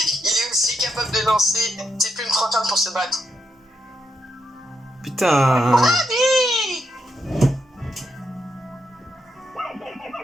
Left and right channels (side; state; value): both; normal; correlation 0.82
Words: est aussi capable de lancer ses plumes flottantes pour se battre. Putain. Allez!